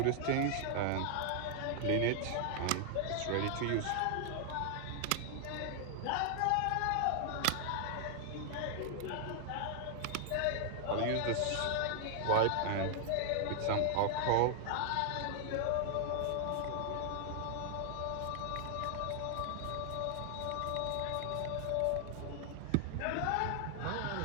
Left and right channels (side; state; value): both; different; correlation 0.00